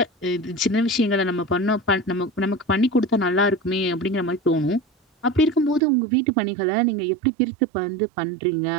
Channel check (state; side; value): drops out; left; at 5.8 s